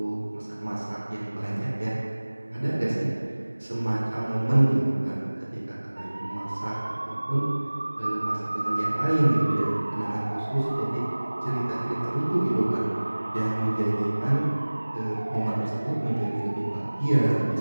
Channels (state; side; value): inverted; both; correlation -1.00